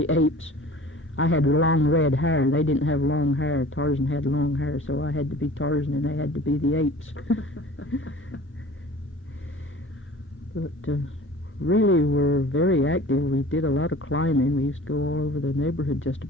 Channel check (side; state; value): both; normal; correlation 0.44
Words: apes. I had long red hair. They didn't have long hair. Tarzan had long hair, so I had to be Tarzan and they had to be the apes. But really were very active. We did a lot of climbing. We used to go all over the neighborhood just